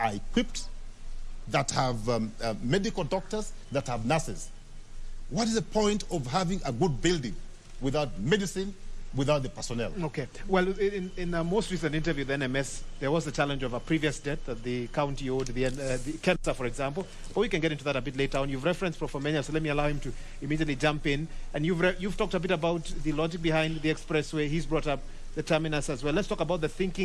equipped, that have medical doctors, that have nurses. What is the point of having a good building without medicine, without the personnel. Okay. Well, in a most recent interview with NMS, there was the challenge of a previous debt that the county owed the Kensa, for example. But we can get into that a bit later on. You've referenced Profomenya, so let me allow him to immediately jump in. And you've talked a bit about the logic behind the expressway. He's brought up the terminus as well. Let's talk about the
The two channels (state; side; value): identical; both; correlation 1.00